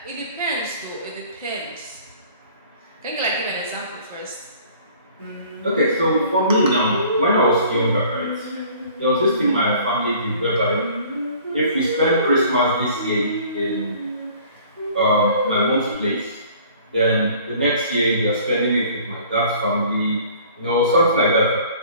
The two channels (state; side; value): inverted; both; correlation -0.51